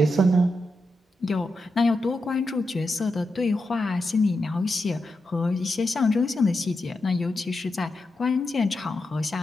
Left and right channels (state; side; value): normal; both; correlation 0.87